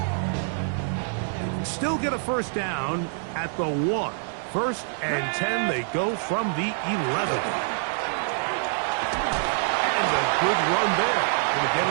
Still get a first down at the 1. 1st and 10, they go from the 11. And a good run there. Going to get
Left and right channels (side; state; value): left; silent; 61 dB below the other